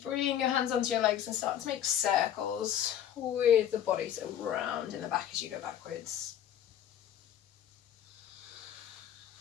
bring your hands onto your legs and start to make circles with the body, so round in the back as you go backwards.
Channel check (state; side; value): quieter; right; 10.4 dB